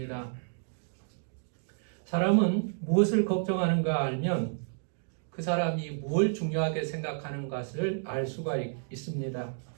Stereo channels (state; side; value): silent; left; digital silence